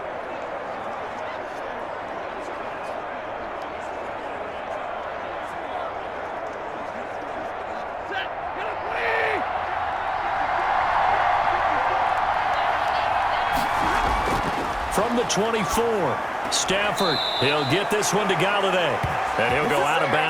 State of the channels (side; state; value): both; identical; correlation 1.00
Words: From the 24, Stafford, he'll get this one to Golladay. And he'll go out of